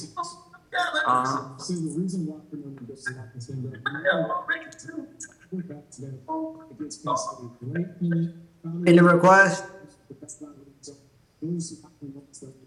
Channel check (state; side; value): identical; both; correlation 1.00